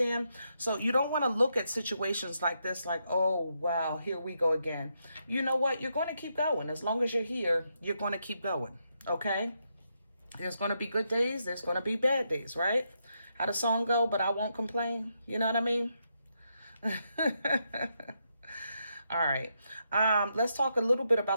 So you don't want to look at situations like this like, oh, wow, here we go again. You know what? You're going to keep going. As long as you're here, you're going to keep going. Okay? There's going to be good days. There's going to be bad days, right? How the song go, but I won't complain. You know what I mean? All right. Let's talk a little bit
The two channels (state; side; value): inverted; both; correlation -0.81